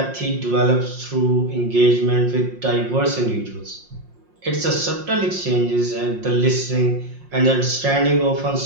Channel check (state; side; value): late; left; 5.6 ms